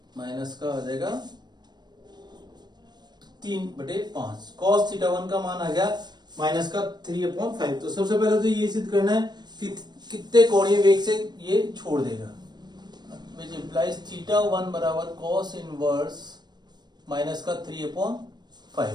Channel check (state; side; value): late; left; 0.21 ms